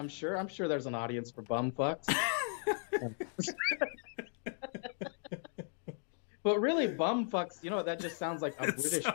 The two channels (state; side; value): silent; right; 53 dB below the other